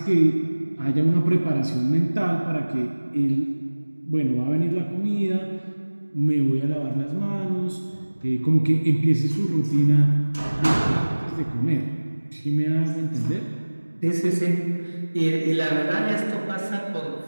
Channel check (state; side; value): inverted; both; correlation -1.00